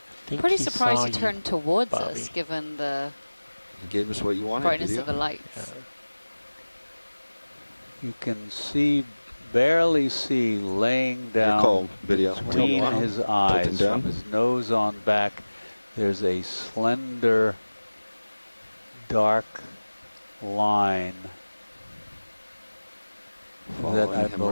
Pretty surprised he turned towards us, given the He gave us what you wanted. brightness video. of the lights. You can barely see laying down video. between his eyes from his nose on back. There's a slender, dark line that that following I him,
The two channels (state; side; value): inverted; both; correlation -1.00